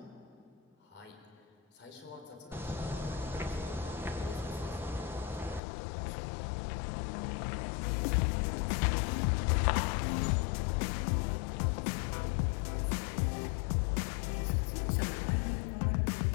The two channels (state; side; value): drops out; right; at 5.6 s